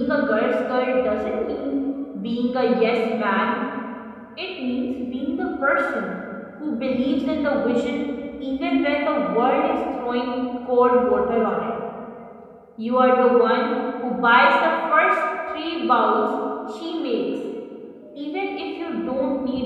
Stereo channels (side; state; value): both; identical; correlation 1.00